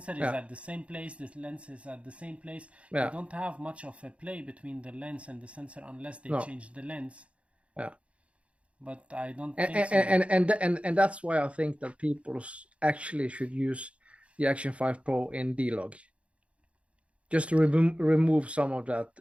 is at the same place, the lens is at the same place. You don't have much of a play between the lens and the sensor unless they change the lens. Yeah. But I don't think so. And that's why I think that people actually should use the Action 5 Pro in D-Log, just to remove some of that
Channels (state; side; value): late; left; 0.062 ms